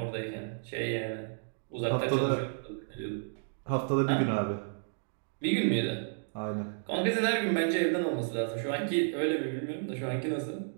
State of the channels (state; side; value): silent; left; digital silence